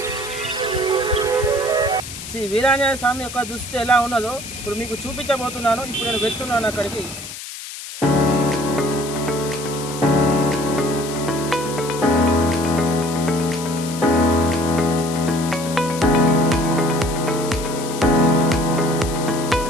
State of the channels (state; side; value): noise; left; hiss, 11 dB below the sound